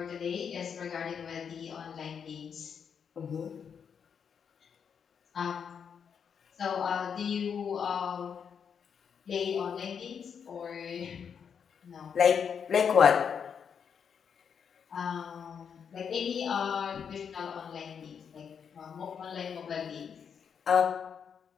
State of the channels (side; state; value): right; quieter; 7.1 dB